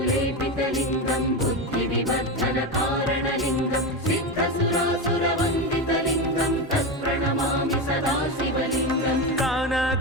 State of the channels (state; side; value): normal; both; correlation 0.17